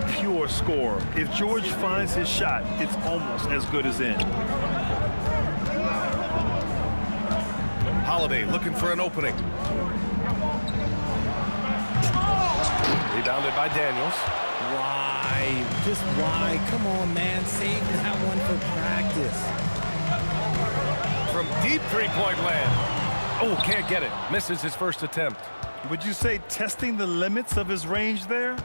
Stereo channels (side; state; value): both; inverted; correlation -1.00